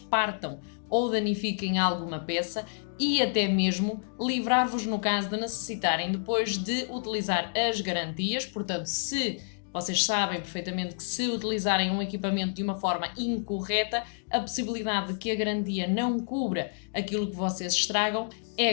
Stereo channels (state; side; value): silent; right; digital silence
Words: ou danifiquem alguma peça e até mesmo livrar-vos no caso de necessitarem depois de utilizar as garantias. Portanto, se vocês sabem perfeitamente que se utilizarem um equipamento de uma forma incorreta, a possibilidade de que a garantia não cubra aquilo que vocês estragam é